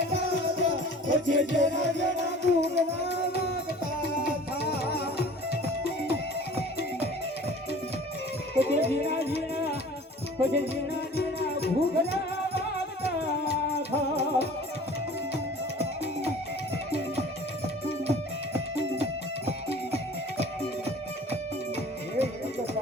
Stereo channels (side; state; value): both; normal; correlation 0.45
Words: પછી જીણા જીણા ભૂગલા વાગતા થા એક